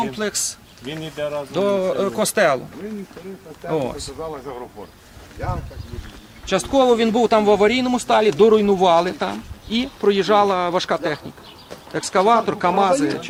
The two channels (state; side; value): identical; both; correlation 1.00